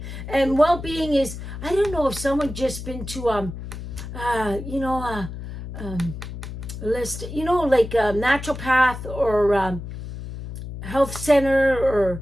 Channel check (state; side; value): noise; left; hum, 9 dB below the sound